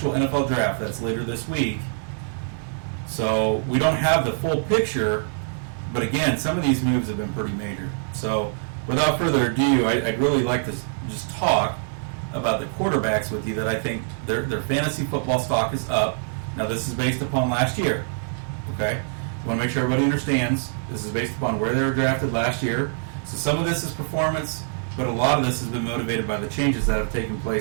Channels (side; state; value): left; silent; digital silence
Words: NFL draft. That's later this week. So we don't have the full picture, but again, some of these moves have been pretty major. So without further ado, I'd really like to just talk about the quarterbacks with you that I think their fantasy football stock is up. Now this is based upon last year. Okay? I want to make sure everybody understands this is based upon where they were drafted last year. So some of this is performance, but a lot of this has been motivated by the changes that have taken